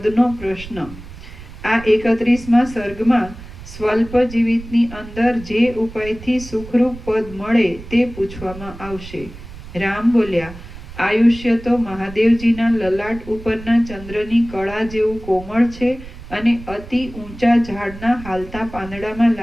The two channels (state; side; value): noise; right; rumble, 15 dB below the sound